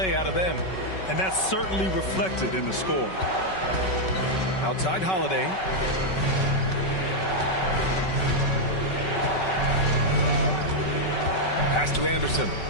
out of them. And that's certainly reflected in the score. Outside Holiday. Pass to Anderson.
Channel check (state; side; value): late; right; 5.3 ms